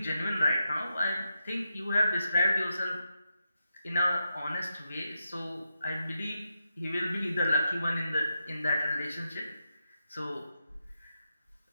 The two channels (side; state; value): both; inverted; correlation -0.86